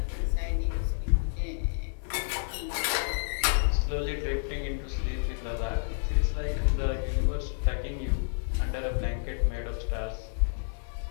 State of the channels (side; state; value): right; silent; digital silence